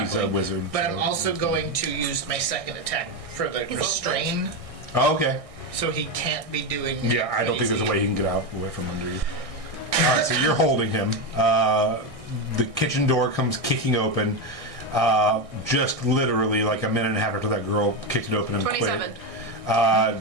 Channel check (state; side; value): late; left; 1.6 ms